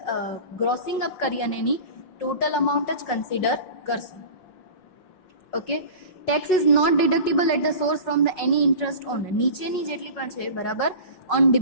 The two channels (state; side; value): late; right; 5.4 ms